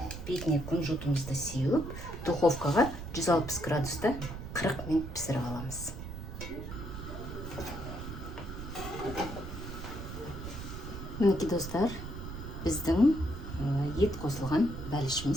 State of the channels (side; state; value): right; noise; rumble, 9 dB below the sound